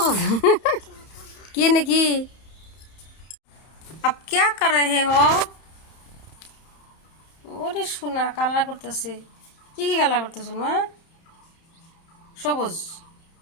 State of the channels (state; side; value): late; right; 31 ms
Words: কি নাকি? আপ क्या कर रहे हो? ওরে সোনা, কালার করতেছে। কি কি কালার করতেছ মা? সবুজ।